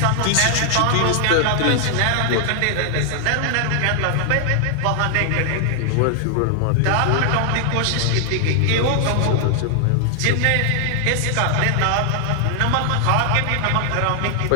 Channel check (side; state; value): both; different; correlation 0.00